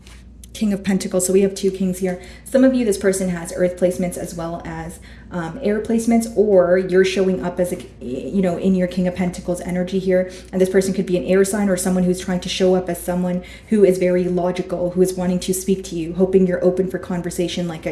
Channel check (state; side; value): identical; both; correlation 1.00